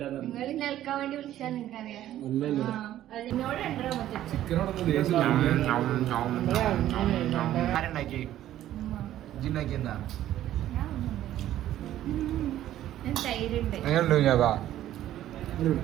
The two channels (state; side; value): quieter; left; 12.8 dB